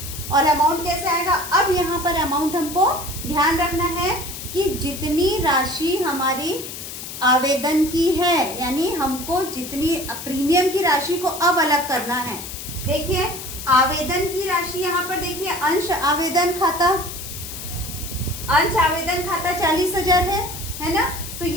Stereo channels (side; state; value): left; noise; hiss, 10 dB below the sound